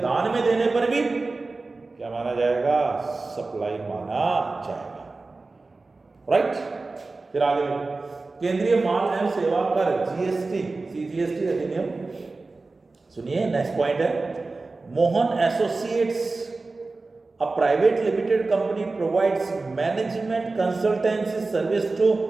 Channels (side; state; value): left; quieter; 3.6 dB